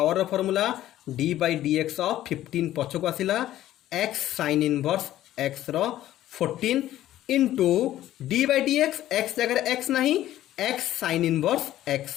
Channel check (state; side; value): quieter; right; 13.5 dB